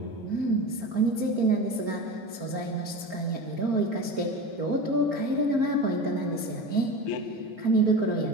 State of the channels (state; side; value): normal; both; correlation 0.28